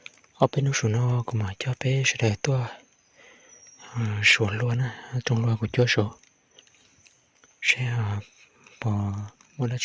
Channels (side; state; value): both; identical; correlation 1.00